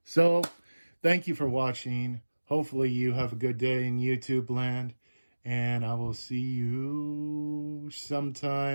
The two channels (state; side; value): inverted; both; correlation -1.00